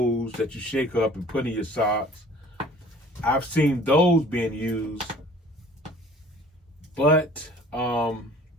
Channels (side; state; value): both; normal; correlation 0.50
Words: that you shake up and put in your socks. I've seen those being used, but I